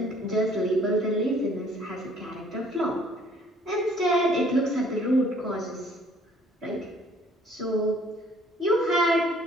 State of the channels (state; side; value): normal; both; correlation 0.58